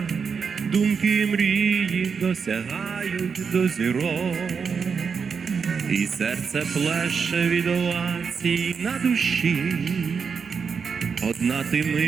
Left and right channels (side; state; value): left; quieter; 5.9 dB